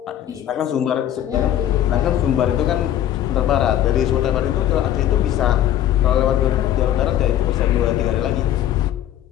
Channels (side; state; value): right; quieter; 11.5 dB